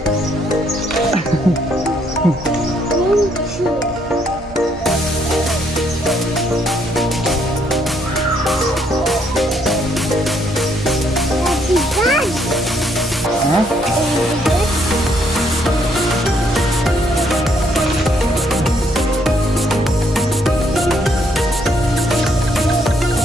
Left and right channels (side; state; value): both; normal; correlation 0.70